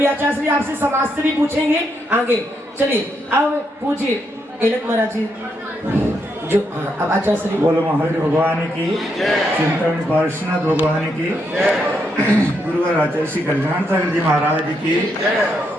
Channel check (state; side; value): normal; both; correlation 0.79